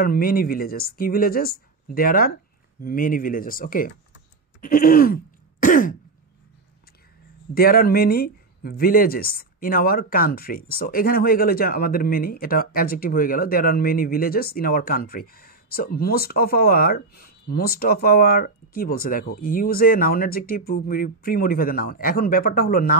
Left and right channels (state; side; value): quieter; left; 3.6 dB